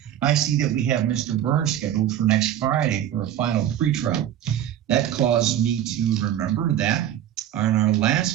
I see that we have Mr. Burns scheduled for next Friday for a final pre-trial. That caused me to remember that on our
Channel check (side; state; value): left; quieter; 11.2 dB